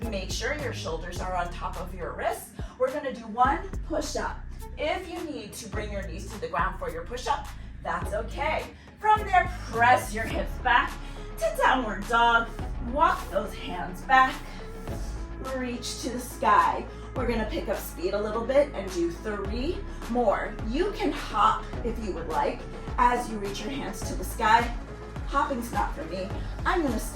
Make sure your shoulders are on top of your wrists. We're gonna do one push-up. If you need to bring your knees to the ground for your push-up, that's okay. From there, press your hips back to downward dog. Walk those hands back. Reach to the sky. We're gonna pick up speed a little bit and do 3 more. You can hop if you would like as you reach your hands to the sky. Hopping's not for me. I'm gonna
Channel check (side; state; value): both; identical; correlation 1.00